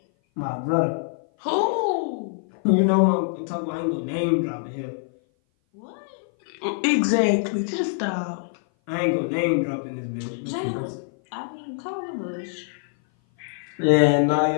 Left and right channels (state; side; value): silent; right; 57 dB below the other